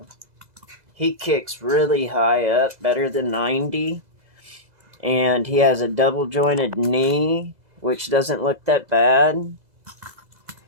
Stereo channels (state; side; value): late; left; 2.0 ms